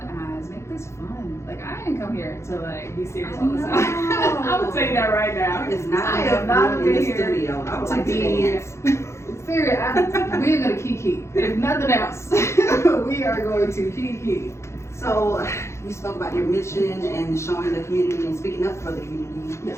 make this fun. Like, I didn't come here to like be serious all the time. I'm saying that right now. It's not I am not in the here studio. I would to like to be dance. serious. We're gonna kiki. If nothing else, we are going to kiki. So, you spoke about your mission and showing the community and speaking up for the community.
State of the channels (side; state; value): right; late; 0.13 ms